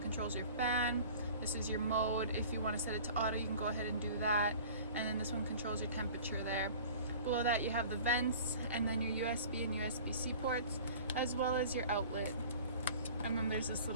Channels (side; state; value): both; inverted; correlation -0.43